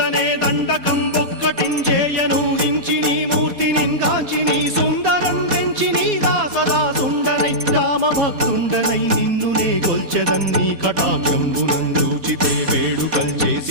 దండకం ఒక్కటించేయనూహించి నీ మూర్తిని గాంచి నీ సుందరం పెంచి నీ దాసదా సుందరై రామభక్తుండనై నిన్నునే కొల్చెదన్నీ కటాక్షంబునందూచితే వేడుకల్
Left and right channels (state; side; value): late; left; 4.1 ms